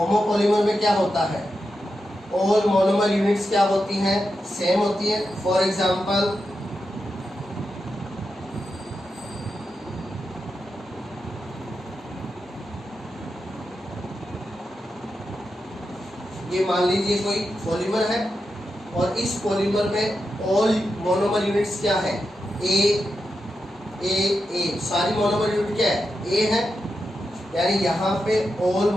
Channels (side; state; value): both; normal; correlation 0.88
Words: में क्या होता है, ऑल मोनोमर यूनिट्स क्या होती हैं, सेम होती है। फॉर एग्जांपल ये मान लीजिए कोई पॉलीमर है और इस पॉलीमर में ऑल मोनोमर यूनिट्स क्या है, ए, सारी मोनोमर यूनिट क्या है, ए है, यानी यहाँ पे ऑल